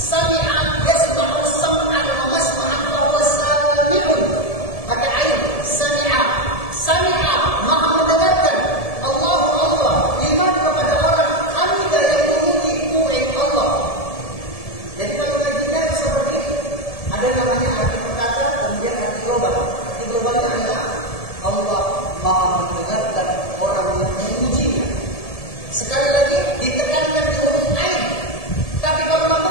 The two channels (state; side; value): late; right; 1.7 ms